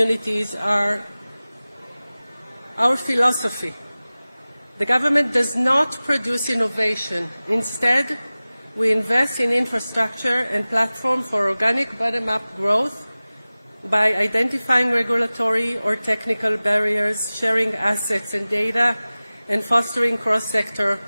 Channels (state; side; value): inverted; both; correlation -0.98